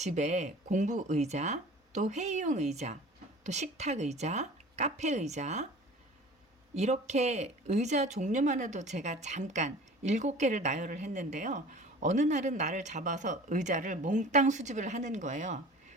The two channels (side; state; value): both; normal; correlation 0.43